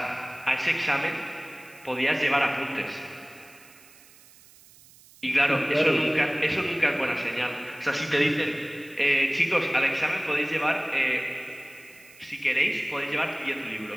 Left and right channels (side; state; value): right; noise; hiss, 24 dB below the sound